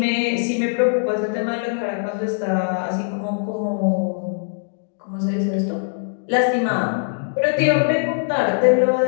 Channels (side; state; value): right; silent; digital silence